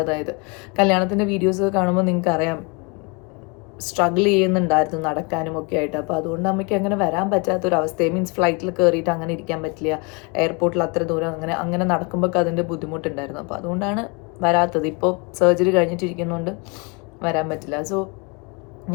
കല്യാണത്തിൻ്റെ വീഡിയോസ് കാണുമ്പോൾ നിങ്ങൾക്ക് അറിയാം, സ്ട്രഗിൾ ചെയ്യുന്നുണ്ടായിരുന്നു നടക്കാനും ഒക്കെ ആയിട്ട്. അപ്പോൾ അതുകൊണ്ട് അമ്മയ്ക്ക് അങ്ങനെ വരാൻ പറ്റാത്തൊരവസ്ഥയെ, മീൻസ് ഫ്ലൈറ്റിൽ കയറിയിട്ട് അങ്ങനെ ഇരിക്കാൻ പറ്റില്ല, എയർപോർട്ടിൽ അത്ര ദൂരം അങ്ങനെ നടക്കുമ്പോൾ അതിൻ്റെ ബുദ്ധിമുട്ടുണ്ടായിരുന്നു. അപ്പോൾ അതുകൊണ്ടാണ് വരാത്തത്. ഇപ്പോൾ സർജറി കഴിഞ്ഞിട്ടിരിക്കുന്നതുകൊണ്ട് വരാൻ പറ്റില്ല. സോ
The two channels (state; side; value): quieter; right; 31.5 dB